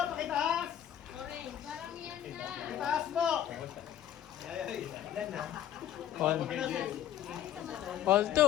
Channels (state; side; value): quieter; right; 11.0 dB